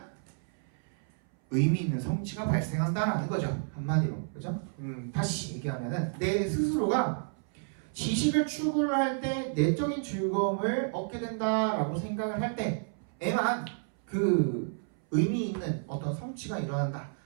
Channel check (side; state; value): left; silent; 57 dB below the other